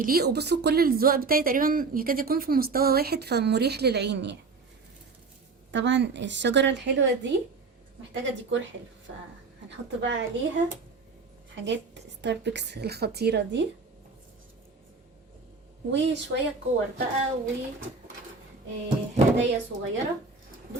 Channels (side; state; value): left; quieter; 4.3 dB